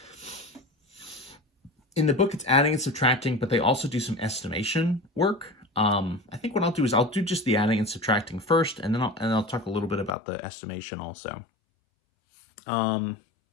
in the book, it's adding and subtracting, but they also do some estimation work. I think what I'll do is I'll do just the adding and subtracting first, and then I'll talk a little bit about the estimation also.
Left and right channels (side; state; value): right; drops out; at 10.2 s